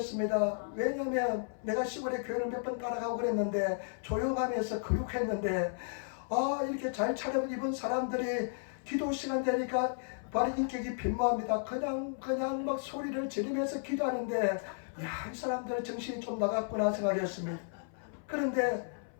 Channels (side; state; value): right; silent; 55 dB below the other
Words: 왜냐하면 내가 시골에 교회를 몇 번 따라가고 그랬는데 조용하면서 거룩했는데 이렇게 잘 차려입은 사람들이 기도 시간 되니까 바로 인격이 빈모합니다. 그냥 막 소리를 지르면서 기도하는데 이 사람들의 정신이 좀 나갔구나 생각했습니다. 그런데